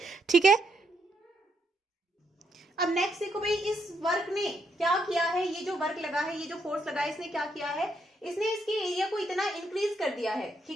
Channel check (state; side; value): normal; both; correlation 0.77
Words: ठीक है। अब नेक्स्ट देखो भाई, इस वर्क ने क्या किया है, ये जो वर्क लगा है, ये जो फोर्स लगा है, इसने क्या किया है, इसने इसके एरिया को इतना इंक्रीज कर दिया है,